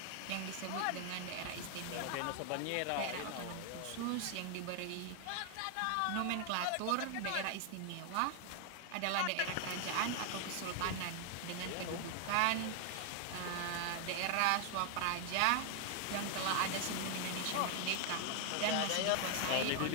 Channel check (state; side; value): different; both; correlation 0.00